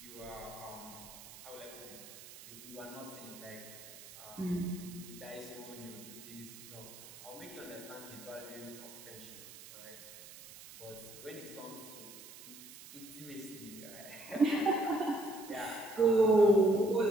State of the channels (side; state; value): right; noise; hiss, 16 dB below the sound